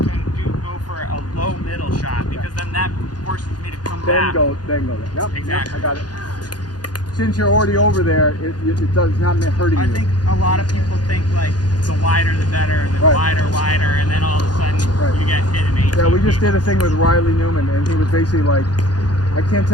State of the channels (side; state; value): right; late; 0.69 ms